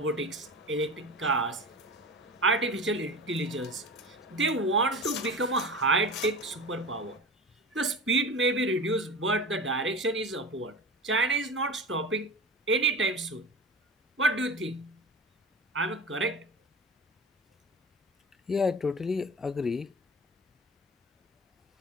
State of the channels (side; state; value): both; normal; correlation 0.32